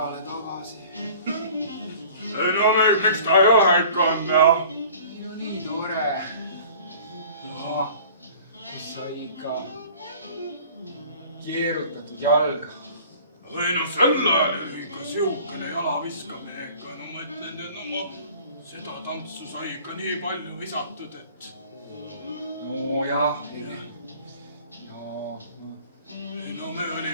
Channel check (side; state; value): both; inverted; correlation -0.47